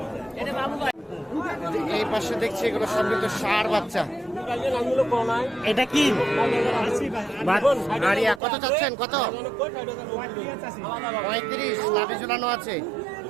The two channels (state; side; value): drops out; left; at 8.4 s